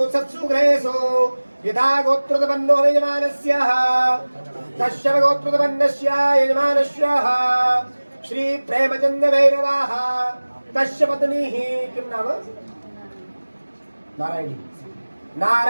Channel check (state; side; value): inverted; both; correlation -1.00